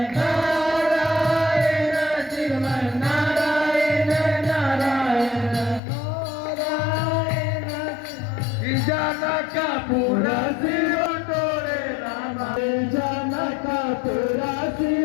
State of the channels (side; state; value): right; drops out; at 5.8 s